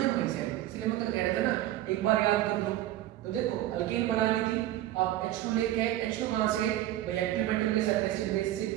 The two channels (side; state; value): left; quieter; 14.2 dB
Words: वही से है। इसलिए मैं कल कह रहा था ना, एक बार याद कर लो। तो देखो अल्केन बनानी थी, आप H2 लेके आए। H2 कहां से? भाई एक्टिव मेटल के साथ एसिड बेस से,